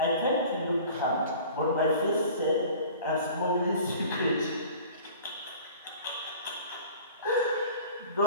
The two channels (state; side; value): inverted; both; correlation -0.44